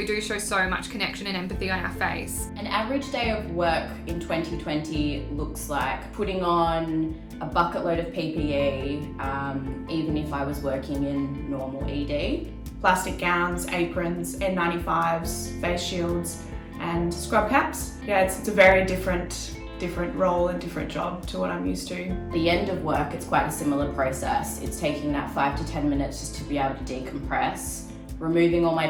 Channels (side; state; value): both; identical; correlation 1.00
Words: do show so much connection and empathy on our face. An average day of work in 2020 looks like putting on a bucket load of PPE, even if I was working in normal ED. Plastic gowns, aprons, N95s, face shields and scrub caps. Yeah, it's a very different role and different job to what I'm used to. At the end of work, it's quite a similar process. It's taking that 5 to 10 minutes just to be able to decompress, removing all my